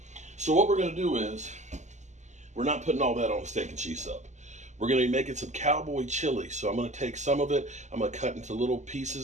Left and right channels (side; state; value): left; late; 0.34 ms